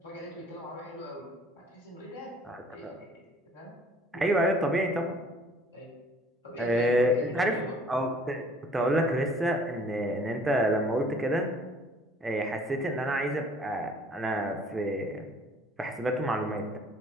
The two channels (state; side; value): normal; both; correlation 0.55